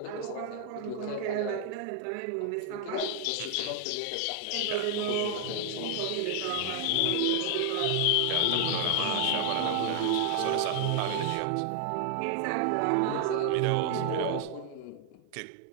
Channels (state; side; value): different; both; correlation 0.00